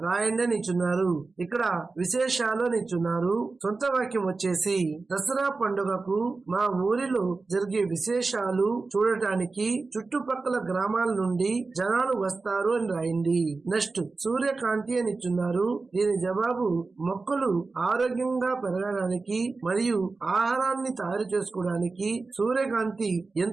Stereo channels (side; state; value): left; quieter; 3.9 dB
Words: రాయండి అని ఇచ్చున్నారు. ఇక్కడ విశేషాలు అని ఇచ్చున్నారు. సొంత వాక్యం వచ్చేసి దసరా పండుగకు మా ఊరిలో జరిగే విశేషాలు చూడటానికి చుట్టుపక్కల గ్రామాల నుండి జనాలు వస్తారు అని రాయండి. నెక్స్ట్ సూర్యకాంతి అని ఇచ్చున్నారు. దీని జవాబు మొక్కలు ఆరోగ్యంగా పెరగడానికి మరియు ఆహారాన్ని తయారు చేసుకోవడానికి సూర్యకాంతి